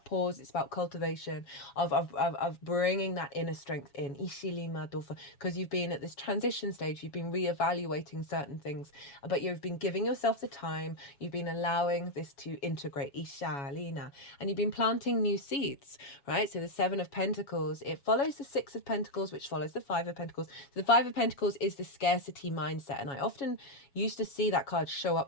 pause. It's about cultivation of bringing that inner strength in. Because you've been at this transition stage. You've been reevaluating certain things, but you've been giving yourself the time. You've been allowing this to integrate. And you've been planting new seeds, right? So the Seven of Pentacles, it follows the Six of Pentacles, which follows the Five of Pentacles. So the Five of Pentacles is the scarcity mindset. And I often used to see that card show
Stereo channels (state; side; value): late; right; 7.1 ms